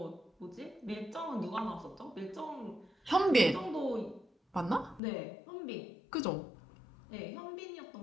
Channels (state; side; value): drops out; right; at 5.0 s